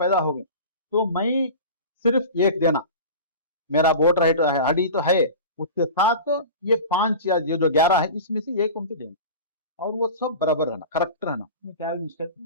हो गई तो मैं सिर्फ एक देना, मेरा वोटर आईडी तो है, उसके साथ ये 5 या ये जो 11 है इसमें से एक उनको देना। और वो सब बराबर रहना, करेक्ट रहना, क्या मिस्टेक,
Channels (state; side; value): inverted; both; correlation -0.34